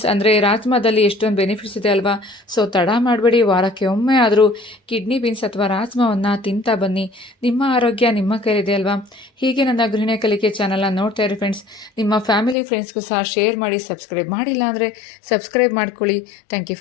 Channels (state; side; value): drops out; right; at 12.6 s